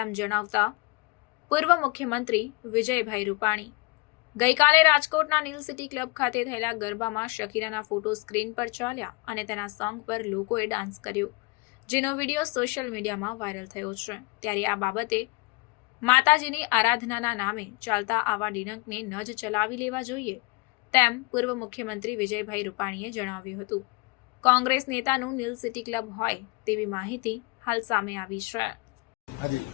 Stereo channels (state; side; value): quieter; right; 25.8 dB